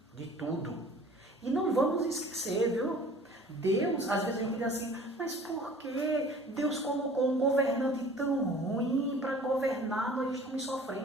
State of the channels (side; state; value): both; normal; correlation 0.48